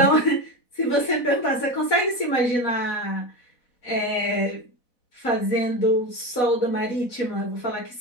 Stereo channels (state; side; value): late; right; 4.0 ms